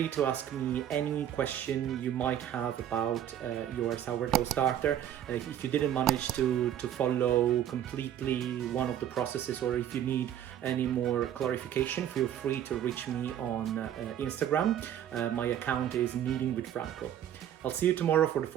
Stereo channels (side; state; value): left; quieter; 10.6 dB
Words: to ask me any question you might have about your sourdough starter. If you didn't manage to follow completely one of the processes, or if you need any more clarification, feel free to reach me on Instagram. My account is Kneading with Franco. I'll see you tomorrow for the